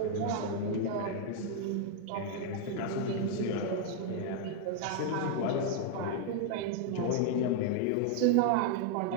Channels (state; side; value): different; both; correlation 0.00